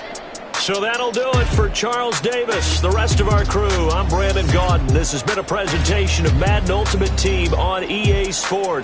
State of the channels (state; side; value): identical; both; correlation 1.00